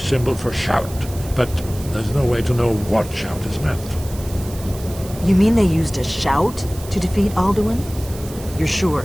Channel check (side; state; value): right; noise; hiss, 16 dB below the sound